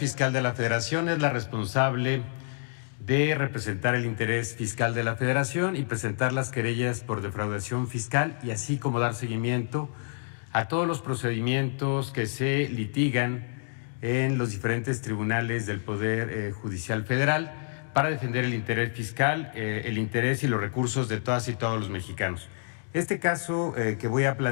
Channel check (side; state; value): right; silent; digital silence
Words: de la Federación es la responsable de representar el interés fiscal de la Federación y presentar las querellas por defraudación fiscal y así como dar seguimiento a todos los procedimientos que se litigan en los diferentes tribunales del Poder Judicial Federal para defender el interés fiscal, el interés y los recursos de todas y todos los mexicanos. Este caso que voy a